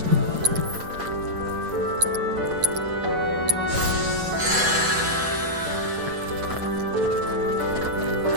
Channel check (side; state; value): left; late; 7.9 ms